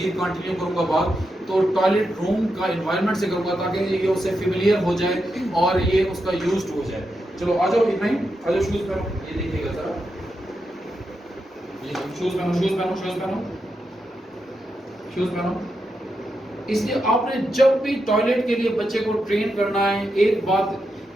कंटिन्यू करूंगा बात, तो टॉयलेट रूम का इन्वायरमेंट से करूंगा ताकि ये उससे फेमिलियर हो जाए और ये उसका यूज्ड हो जाए। चलो आ जाओ इब्राहिम, आ जाओ, शूज़ पहनो, ये देखिएगा ज़रा, ये शूज़ पहनो, शूज़ पहनो, शूज़ पहनो, शूज़ पहनो। इसलिए आपने जब भी टॉयलेट के लिए बच्चे को ट्रेन करना है, एक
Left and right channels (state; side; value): normal; both; correlation 0.86